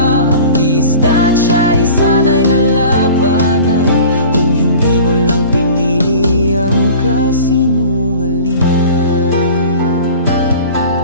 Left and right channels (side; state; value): both; inverted; correlation -0.42